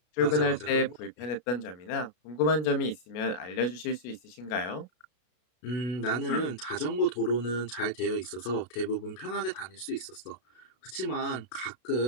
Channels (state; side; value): late; right; 33 ms